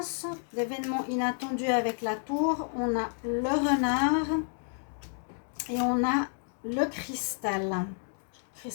d'événements inattendus avec la tour. On a le renard Et on a le cristal.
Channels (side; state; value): right; silent; 57 dB below the other